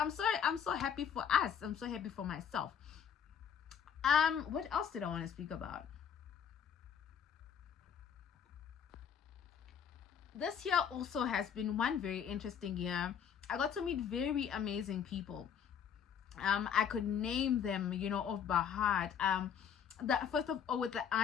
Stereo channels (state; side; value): quieter; right; 8.0 dB